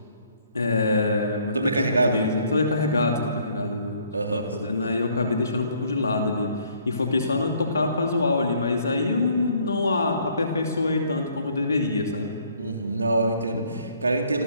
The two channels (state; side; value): inverted; both; correlation -0.63